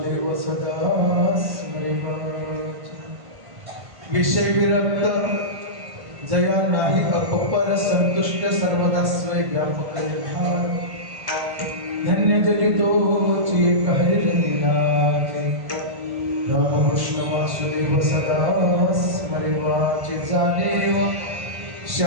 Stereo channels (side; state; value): left; late; 1.5 ms